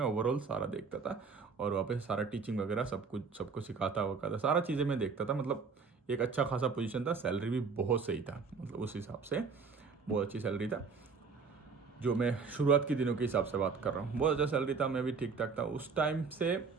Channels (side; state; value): left; quieter; 5.1 dB